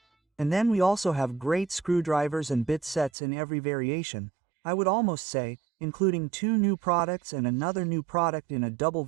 And then we also have great screwdrivers and bit sets in every variation, I would almost say, including 2 new products and another new product in a double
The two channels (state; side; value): drops out; left; at 3.1 s